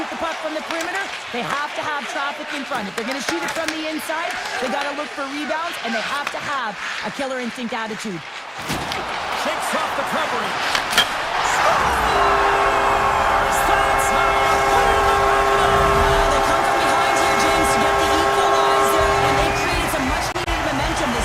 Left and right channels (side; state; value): both; identical; correlation 1.00